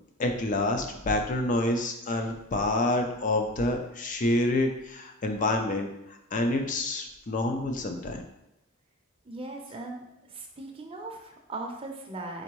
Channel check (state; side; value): normal; both; correlation 0.33